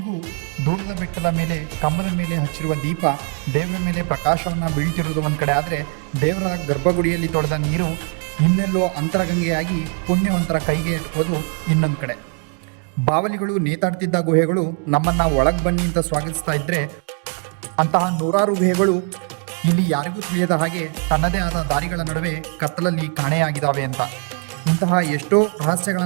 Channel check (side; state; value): left; quieter; 38.2 dB